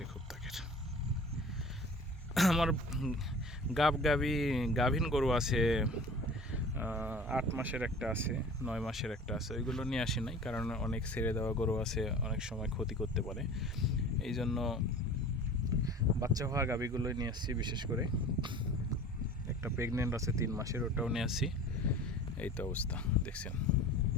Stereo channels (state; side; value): normal; both; correlation 0.42